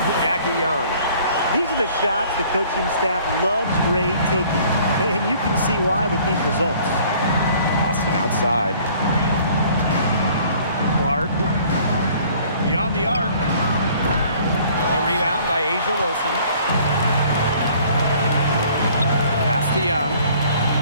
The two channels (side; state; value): both; inverted; correlation -0.55